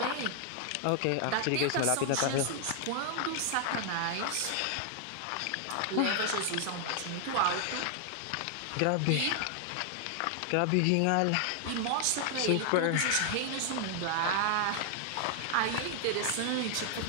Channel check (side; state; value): both; different; correlation 0.00